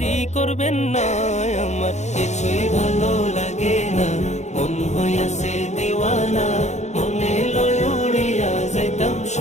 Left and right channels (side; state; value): right; late; 0.33 ms